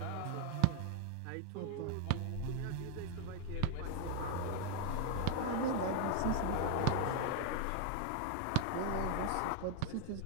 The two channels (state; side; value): different; both; correlation 0.00